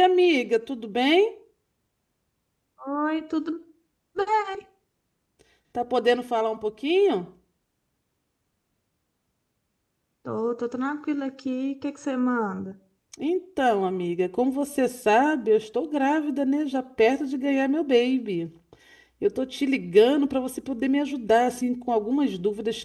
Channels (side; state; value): both; identical; correlation 1.00